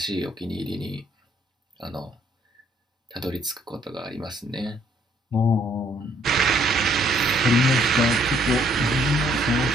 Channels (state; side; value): normal; both; correlation 0.66